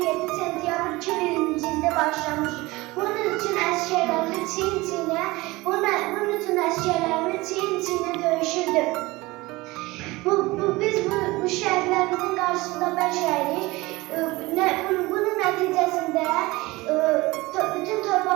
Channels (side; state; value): left; quieter; 21.4 dB